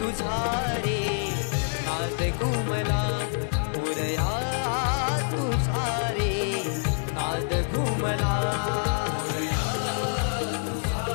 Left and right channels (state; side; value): silent; right; digital silence